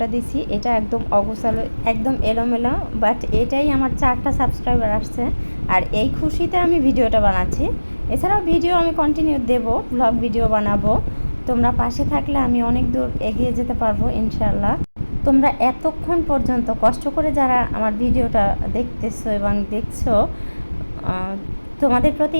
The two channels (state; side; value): inverted; both; correlation -1.00